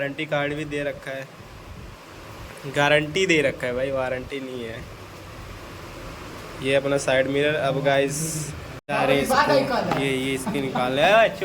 कार्ड भी दे रखा है, गारंटी दे रखा है भाई, वारंटी नहीं है। ये अपना साइड मिरर। अब गाइस ये इसकी निकाल है।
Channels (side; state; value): both; identical; correlation 1.00